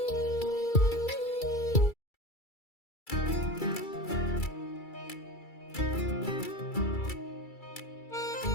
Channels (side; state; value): right; late; 2.3 ms